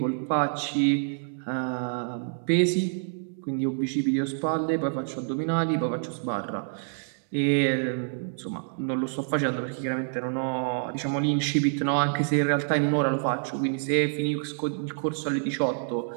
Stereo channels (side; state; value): left; silent; digital silence